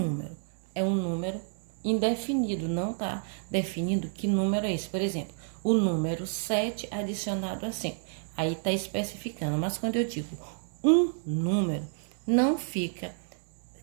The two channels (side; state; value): left; silent; 58 dB below the other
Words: é um número indefinido, não está definindo que número é esse. Por exemplo, o número 7 adicionado a 5. Aí está especificando, mas quando eu digo um número, não fica